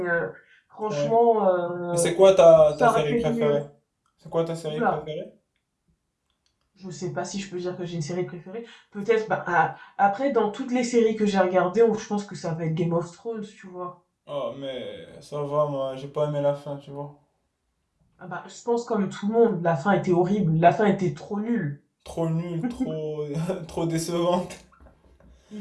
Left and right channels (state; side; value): identical; both; correlation 1.00